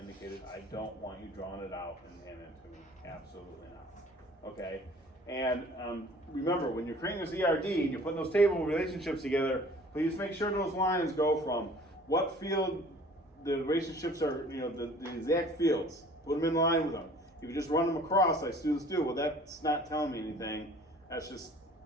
I don't want you drawing it out and handing it to me. Absolutely not. Okay? And remember, when you're creating this ERD and you're putting those table relationships together, please make sure those lines go from what field the relationships are, the exact fields. Put them in line with them. If you just run them across like students do, well, that's not telling me anything. That's just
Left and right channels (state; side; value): normal; both; correlation 0.50